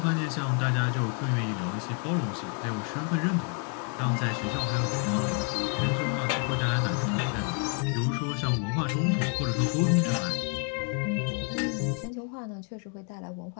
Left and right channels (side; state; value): right; quieter; 39.8 dB